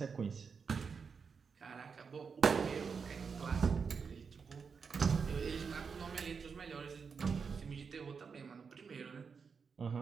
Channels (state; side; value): quieter; left; 5.7 dB